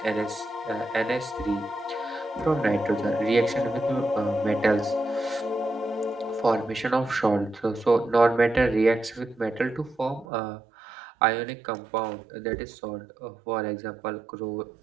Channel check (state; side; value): drops out; left; at 10.2 s